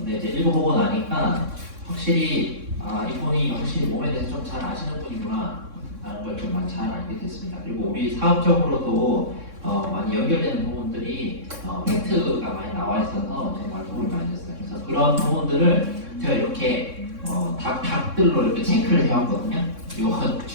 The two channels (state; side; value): late; left; 3.6 ms